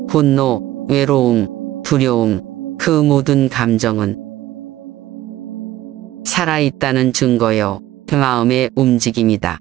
분노, 외로움, 두려움, 그 모든 감정은 살아있다는 증거요, 마음의 움직임이다.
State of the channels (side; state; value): left; quieter; 15.0 dB